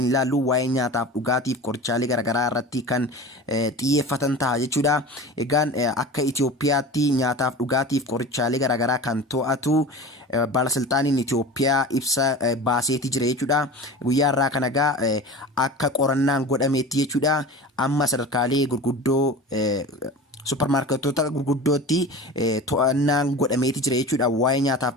ilaallu waa'ee nyaataaf dhugaatiif qorichaalee garaagaraa irratti kan xiyyeeffatan ta'a jechuudha. Egaan akka Itoophiyaatti nyaataaf dhugaatiif qorichaalee garaagaraa kan to'atu baalasilxaaniin Itoophiyaa ibsa baaseeti jira jechuudha. Guyyaa irraa kana egaa akka qorannaan godhameetti jechuudha. Amma sadarkaalee gurguddoo supermarketoota gurguddootti to'annaan godhameeti jira jechuudha waa'ee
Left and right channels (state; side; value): normal; both; correlation 0.34